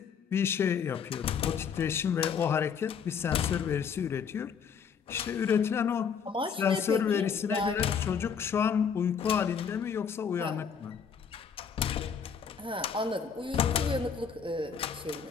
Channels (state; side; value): quieter; right; 6.8 dB